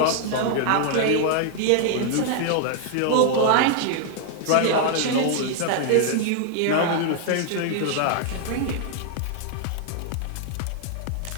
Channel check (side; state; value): both; different; correlation 0.00